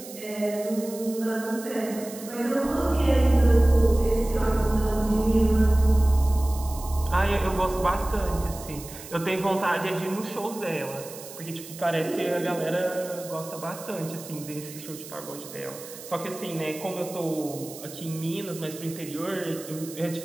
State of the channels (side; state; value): right; noise; hiss, 15 dB below the sound